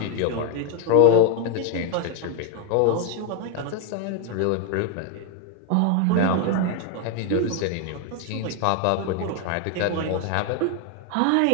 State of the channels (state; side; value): different; both; correlation 0.01